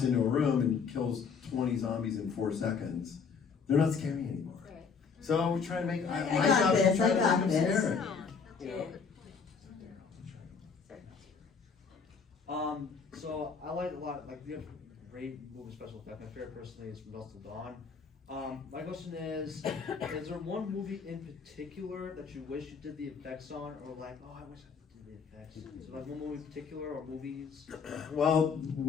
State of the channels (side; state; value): right; quieter; 5.7 dB